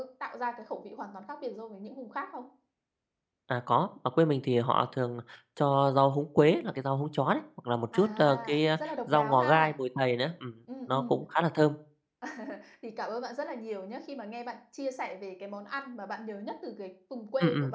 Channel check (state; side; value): identical; both; correlation 1.00